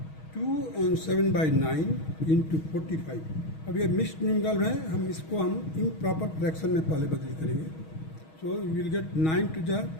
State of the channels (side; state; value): right; late; 6.3 ms